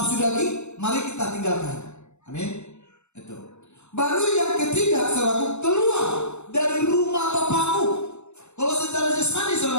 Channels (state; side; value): late; right; 0.83 ms